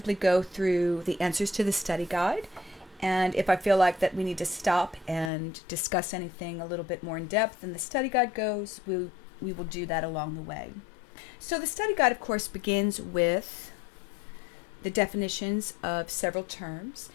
go through the answers to the study guide, and if I feel like that we need to stop and discuss anything a little bit more in depth than the study guide goes, we will do that along the way. So the study guide, of course, begins with the definitions of several terms.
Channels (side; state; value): right; drops out; at 5.3 s